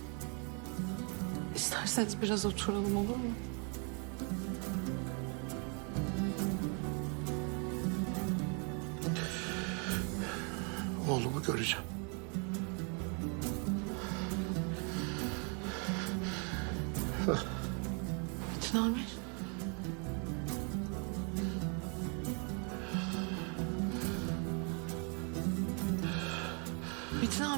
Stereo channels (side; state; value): left; quieter; 36.6 dB